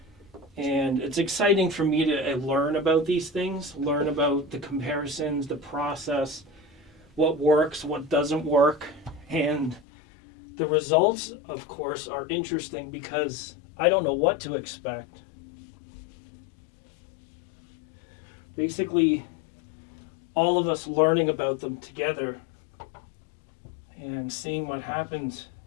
And it's exciting for me to learn about these things, learn about the comparisons, the process, what works, what doesn't work. And the results, of course, are interesting because I don't know what to expect. Basically, all of us learning about them together and seeing what happens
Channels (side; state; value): right; drops out; at 9.8 s